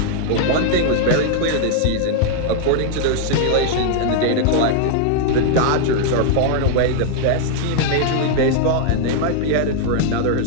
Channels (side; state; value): both; different; correlation -0.01